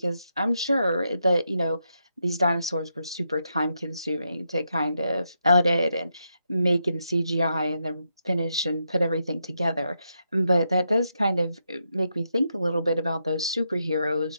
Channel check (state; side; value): inverted; both; correlation -0.82